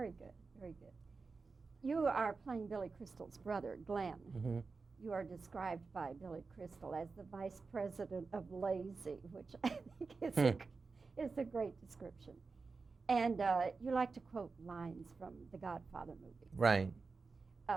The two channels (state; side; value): quieter; left; 4.4 dB